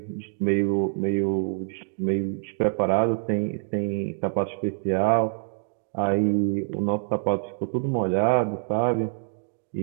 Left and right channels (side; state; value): left; silent; digital silence